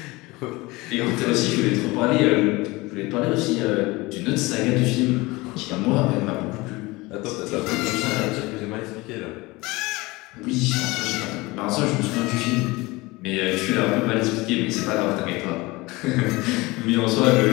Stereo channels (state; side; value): quieter; right; 22.3 dB